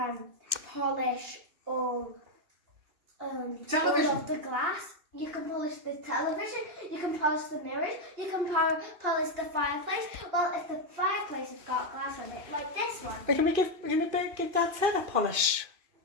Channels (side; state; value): left; late; 2.5 ms